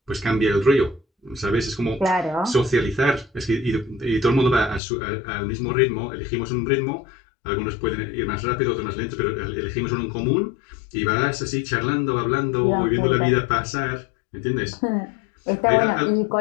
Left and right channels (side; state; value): right; drops out; at 4.8 s